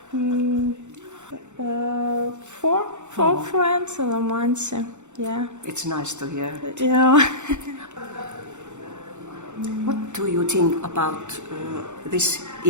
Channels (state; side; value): late; left; 0.84 ms